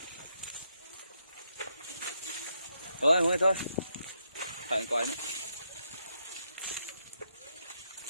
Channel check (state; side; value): inverted; both; correlation -0.79